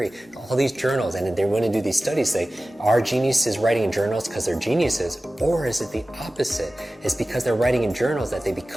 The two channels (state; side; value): normal; both; correlation 0.96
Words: all these journals, and they want to do these studies, say, are geniuses writing in journals because they're geniuses, or is it the opposite? It's because they're writing in journals that they